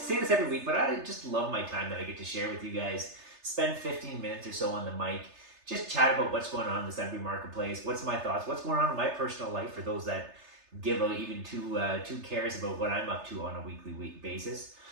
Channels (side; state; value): left; late; 3.3 ms